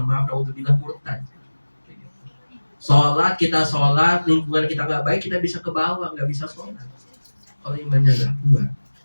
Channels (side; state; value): both; inverted; correlation -1.00